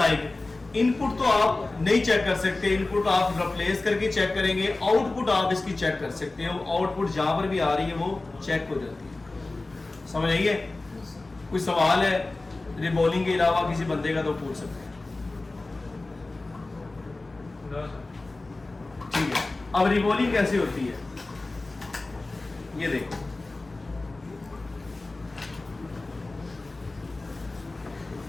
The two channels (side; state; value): right; quieter; 3.2 dB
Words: इनपुट तो आप नहीं चेक कर सकते, इनपुट आप रिप्लेस करके चेक करेंगे, आउटपुट आप इसकी चेक कर सकते हैं। आउटपुट जहां पर भी आ रही है वो चेक हो जाती है। समझ आइए? कोई सवाल है रिबॉलिंग के अलावा किसी बंदे का तो पूछ सकते हैं। ठीक है, अब रिबॉलिंग कैसे होती है ये देखो।